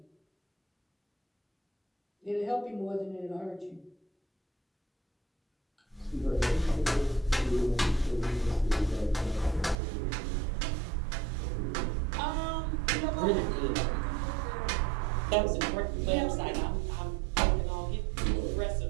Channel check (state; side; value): drops out; left; at 9.8 s